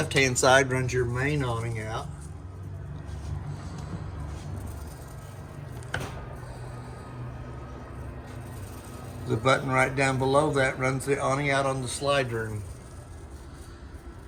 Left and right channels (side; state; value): both; identical; correlation 1.00